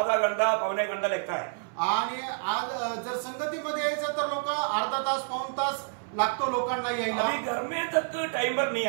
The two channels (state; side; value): silent; left; 59 dB below the other